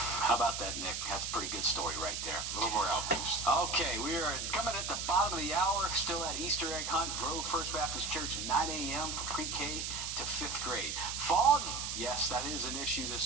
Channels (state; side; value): noise; right; hiss, 3 dB below the sound